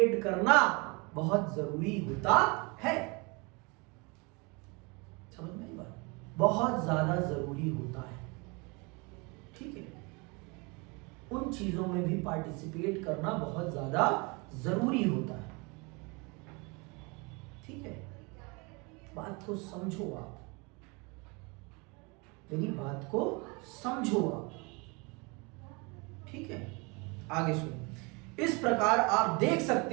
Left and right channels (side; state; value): left; quieter; 29.0 dB